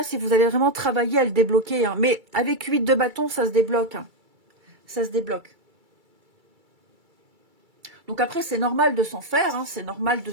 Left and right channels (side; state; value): left; late; 2.3 ms